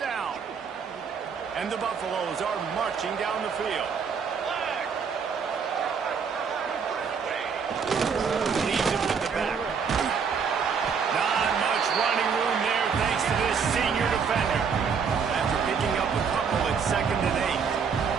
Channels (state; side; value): quieter; left; 6.2 dB